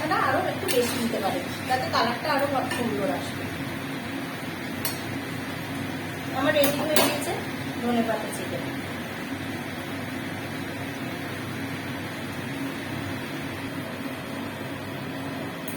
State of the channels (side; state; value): both; identical; correlation 1.00